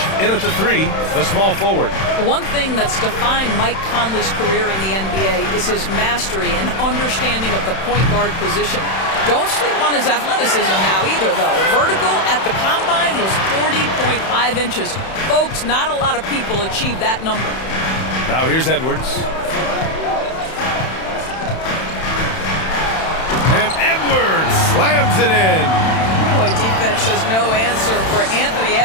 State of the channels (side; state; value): right; late; 31 ms